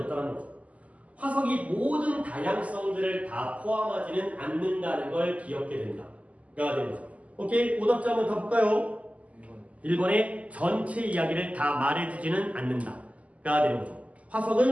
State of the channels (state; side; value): late; left; 0.069 ms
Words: 거죠. 화석이 모든 다양성들을 다 포함하지는 않는다는 걸 기억해야 된다가 되는 거죠. 오케이, 오답자 한번 더 볼까요? 1번의 전체 이야기를 다 말해주지는 않는다가 되는 거죠.